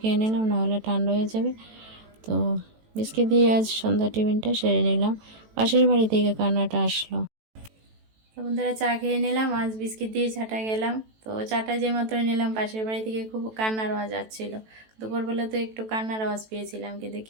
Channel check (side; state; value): left; late; 18 ms